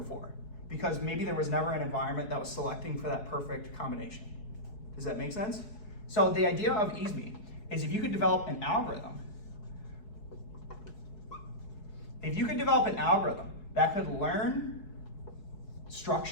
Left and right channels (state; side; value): late; right; 4.7 ms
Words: because maybe there was never an environment that was selecting for that perfect combination. Does that make sense? So the idea of EASME is if you could develop an algorithm that could learn